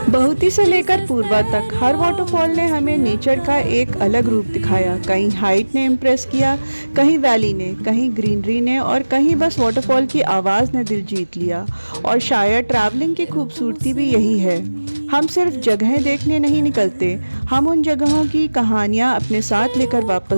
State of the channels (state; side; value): inverted; both; correlation -1.00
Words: बहुती से लेकर पूर्वा तक हर वाटरफॉल ने हमें नेचर का एक अलग रूप दिखाया। कहीं हाइट ने इम्प्रेस किया, कहीं वैली ने, कहीं ग्रीनरी ने और कहीं बस वाटरफॉल की आवाज़ ने दिल जीत लिया। और शायद ट्रैवलिंग की खूबसूरती भी यही है, हम सिर्फ जगहें देखने नहीं निकलते, हम उन जगहों की कहानियाँ अपने साथ लेकर